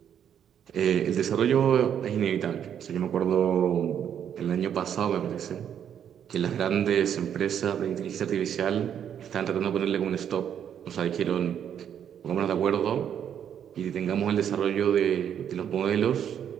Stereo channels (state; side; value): quieter; left; 9.0 dB